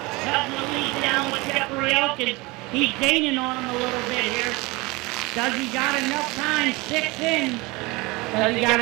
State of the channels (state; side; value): quieter; left; 23.7 dB